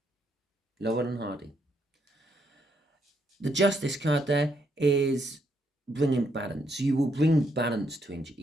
Laurel and Hardy. The Justice card there is bringing balance. You will bring balance to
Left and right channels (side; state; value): both; normal; correlation 0.75